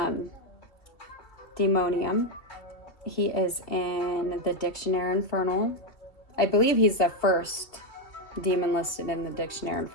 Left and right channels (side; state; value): right; late; 2.8 ms